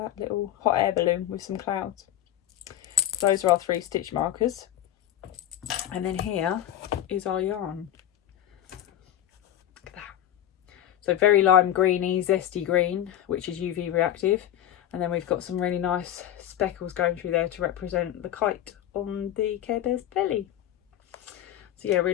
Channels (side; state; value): right; quieter; 11.9 dB